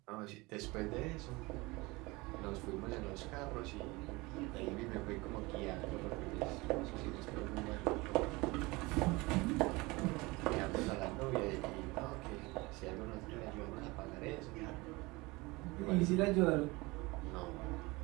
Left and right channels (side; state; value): left; quieter; 23.3 dB